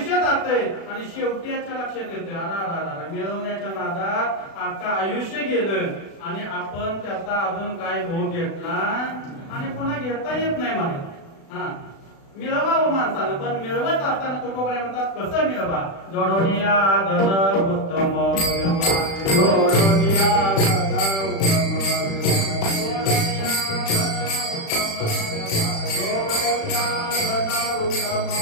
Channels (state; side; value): late; right; 36 ms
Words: जातंय आणि शेवटी याच्या लक्षात येते अरा मिळवण्याच्या नादात आता आयुष्य गेलं आणि आपण त्याचा अजून काय भोग घेतला आणि पुन्हा घेता येत नाही मला. मिळवावं माणसानं पण मिळवत असताना तुकोबाने म्हणतात कसं मिळवा? जोडोनिया धन उत्तम जोडोनिया